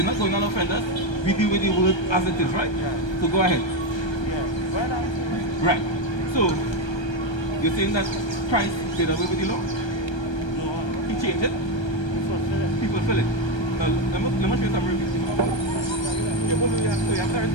not going to offend us. We deal with the word as it is, right? So go ahead. Right. So, you're saying that Christ did away with the law? No. He changed it? He fulfilled it. Now, let me show you some reviews.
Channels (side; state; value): right; late; 1.3 ms